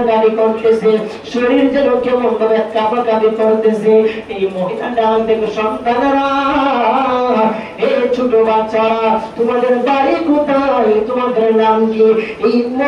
করতেছে, শরীর যেন কেমন ভাবে কাঁপাকাঁপি করতেছে। এই মহিলাটা দেখো, সন্তানেরা, এই ছোট বাচ্চারা, তোমাদের বাড়ি কোথায়, তোমাদের নাম কি? এই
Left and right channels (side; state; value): both; identical; correlation 1.00